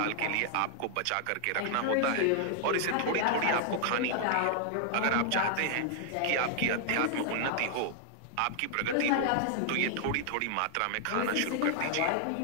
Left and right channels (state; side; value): different; both; correlation 0.00